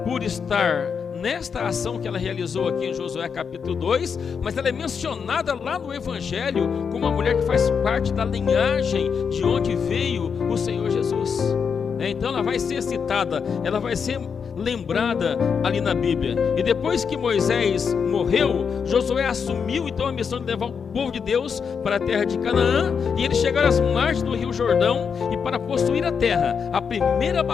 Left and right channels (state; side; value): quieter; right; 6.4 dB